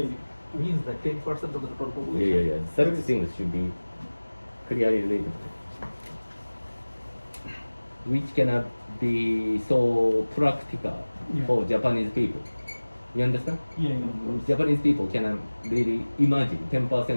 means that 10% of the total population. Yeah. Such things should be clearly written. Which cannot be so practical Yeah. for Japanese people. You understand? Yeah. Japanese people cannot really imagine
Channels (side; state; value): both; inverted; correlation -1.00